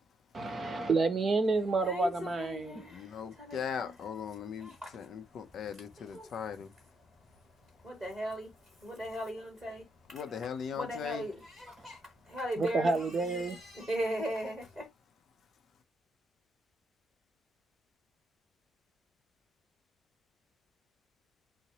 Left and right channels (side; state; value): both; normal; correlation 0.78